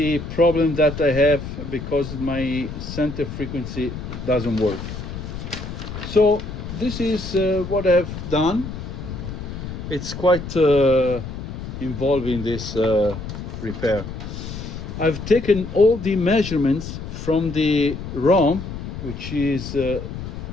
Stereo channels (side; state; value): left; noise; rumble, 8 dB below the sound